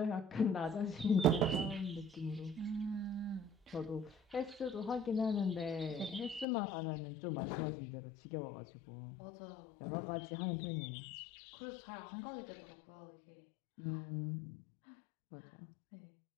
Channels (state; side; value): drops out; right; at 6.5 s